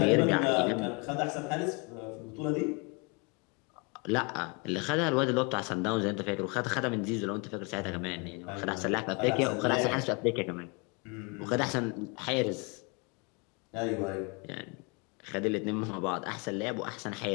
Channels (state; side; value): quieter; right; 31.9 dB